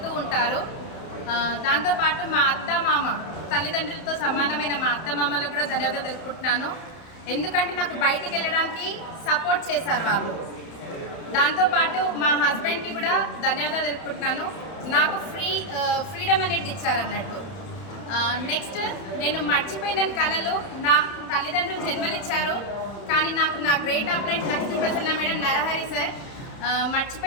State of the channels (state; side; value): late; right; 31 ms